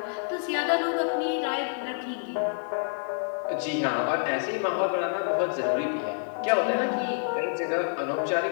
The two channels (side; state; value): right; silent; 59 dB below the other